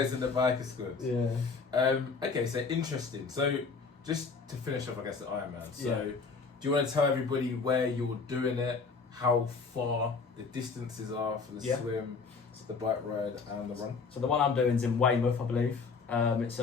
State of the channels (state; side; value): quieter; right; 4.8 dB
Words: in the biker squad. Yeah. Okay, so interesting. So just to finish off, I guess, the Ironman. So Yeah. do you want to tell everybody where you're doing it, how far the distances are for the Yeah. swim, the bike ride, and the run? So the one I'm doing is in Weymouth, I believe. It's